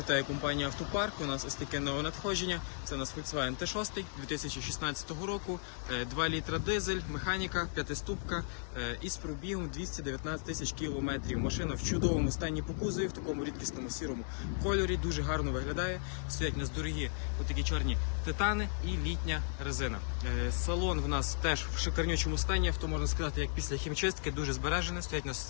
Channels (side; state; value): right; silent; digital silence